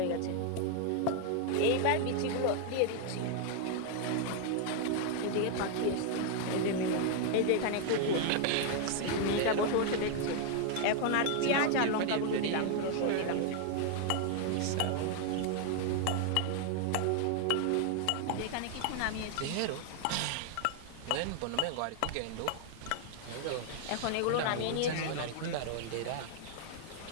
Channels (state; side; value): different; both; correlation 0.00